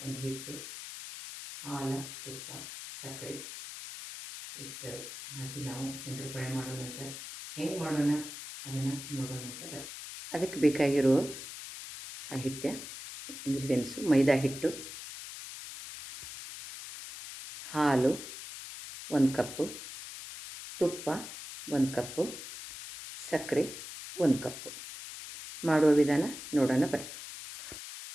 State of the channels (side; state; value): left; noise; hiss, 10 dB below the sound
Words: ಒಂದು ಹಿಟ್ಟು, ಹಾಲು, ತುಪ್ಪ, ಸಕ್ಕರೆ ಇಷ್ಟು ಹಾಕಿ ನಾವು ಶಂಕರಪಾಳೆ ಮಾಡೋಣಂತ. ಹೆಂಗೆ ಮಾಡೋಣ ಅದನ್ನು ನೋಡೋಣಂತ ಬರ್ರಿ. ಅದಕ್ಕೆ ಬೇಕಾಗಿರೋ ಸಾಹಿತ್ಯ ಇಂಗ್ರೀಡಿಯೆಂಟ್ಸು: ಮೈದಾ ಹಿಟ್ಟು, ಹಾಲು 1 ಕಪ್ಪು, ತುಪ್ಪ 1 ಕಪ್ಪು, ಸಕ್ಕರೆ 1 ಕಪ್ಪು. ಮಾಡುವ ವಿಧಾನ ನೋಡೋಣ ಬರ್ರಿ.